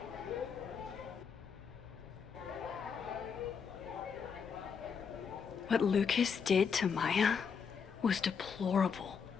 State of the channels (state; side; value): quieter; right; 6.3 dB